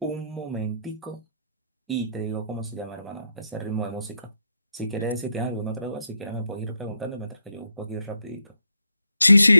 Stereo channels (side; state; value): both; inverted; correlation -0.79